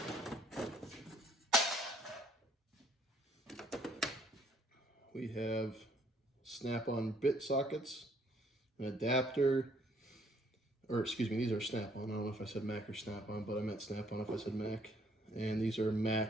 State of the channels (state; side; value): normal; both; correlation 0.64